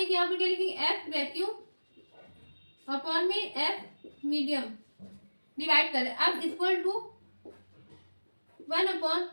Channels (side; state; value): both; inverted; correlation -1.00